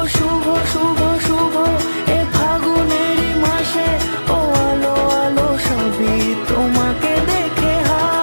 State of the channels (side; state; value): both; inverted; correlation -1.00